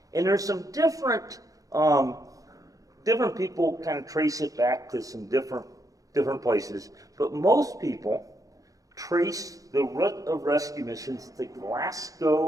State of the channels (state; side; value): late; left; 0.17 ms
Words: And there's some different people kind of trace it back to some different places, but most people trace the root of rescue missions to